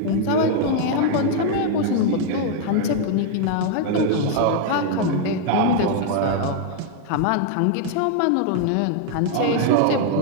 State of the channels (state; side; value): different; both; correlation 0.00